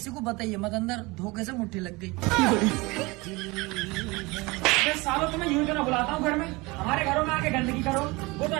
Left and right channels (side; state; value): left; quieter; 24.1 dB